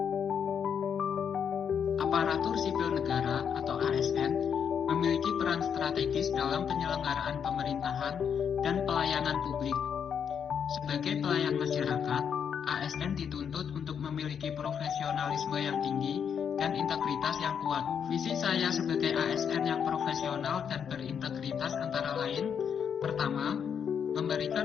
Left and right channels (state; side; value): quieter; right; 7.6 dB